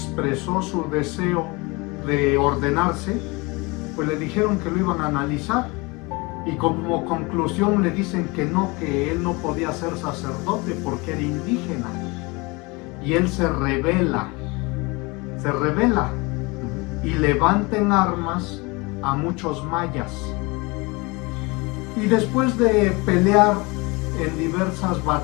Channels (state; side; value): quieter; right; 26.0 dB